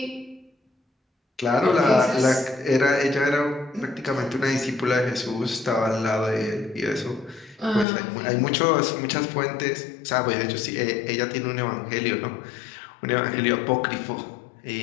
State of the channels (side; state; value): right; drops out; at 7.9 s